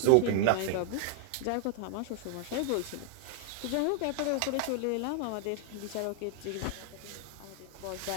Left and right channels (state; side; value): different; both; correlation 0.00